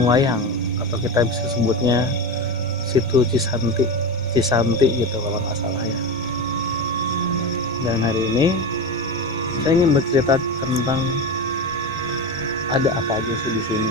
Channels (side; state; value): both; normal; correlation 0.22